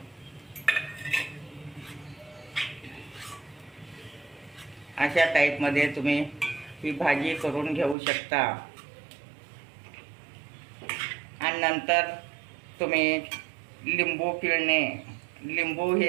अशा टाईपमध्ये तुम्ही ही भाजी करून घेऊ शकता. आणि नंतर तुम्ही लिंबू पिळणे. लिंबू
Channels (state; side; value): drops out; left; at 8.0 s